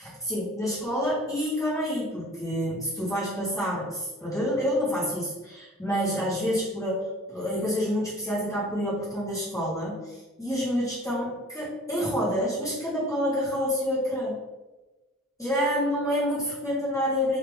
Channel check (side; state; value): both; normal; correlation 0.45